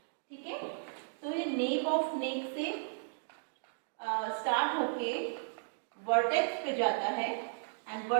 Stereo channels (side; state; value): left; silent; digital silence